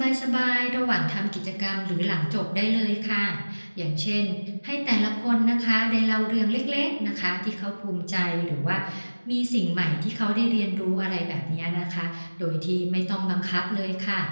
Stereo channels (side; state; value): both; inverted; correlation -1.00